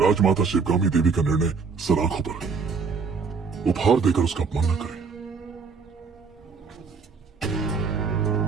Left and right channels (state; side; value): quieter; left; 5.2 dB